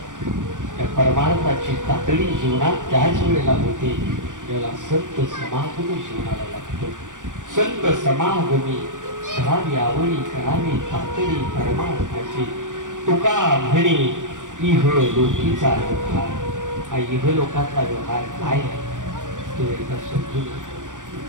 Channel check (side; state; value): left; late; 0.87 ms